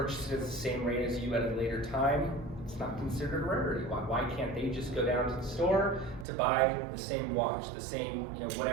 it at the same rate as you at a later time, it's not considered a rarity. Why can't they just go down to the store to buy the same watch, the same,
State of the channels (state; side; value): drops out; left; at 6.2 s